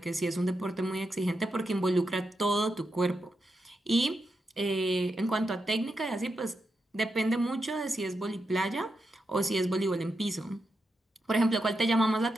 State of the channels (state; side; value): normal; both; correlation 0.86